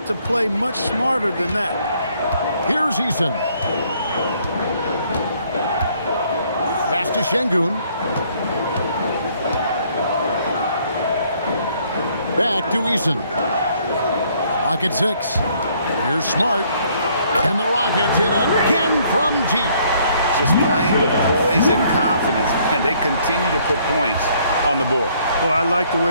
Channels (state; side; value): inverted; both; correlation -0.65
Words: to play much smarter than that. Here's Eason. Pass to Şengün. Back to Eason. Rocket 6. Here's Smart. And the Rockets hit again from deep. Just playing with poise and confidence, and they continue to put points on the board. Well, I like the